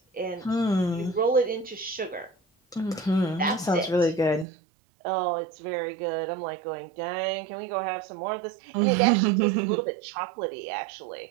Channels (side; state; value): left; drops out; at 4.5 s